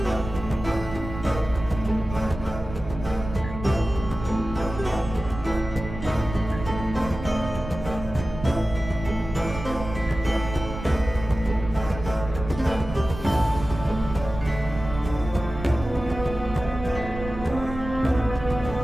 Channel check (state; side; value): noise; right; rumble, 10 dB below the sound